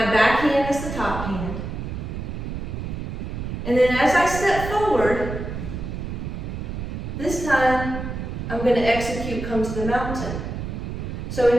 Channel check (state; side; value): noise; right; rumble, 5 dB below the sound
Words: back hand is the top hand. And then as I step forward, this time I'm going to execute come to the mountain. So